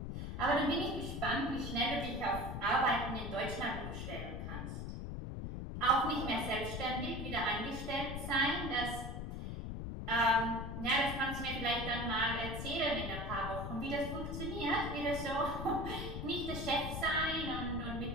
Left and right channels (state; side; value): noise; left; rumble, 5 dB below the sound